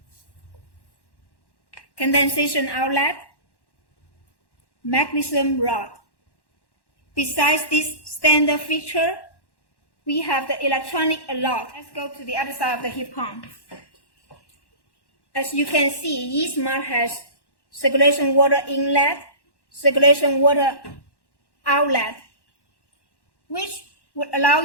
condensation outlet, magnesium rod. Besides this standard feature, we have the electronic alarm. Let's go to the other side of the heat pump. As you can see, E-Smart has circulation water inlet, circulation water outlet, which would allow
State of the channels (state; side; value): late; right; 1.1 ms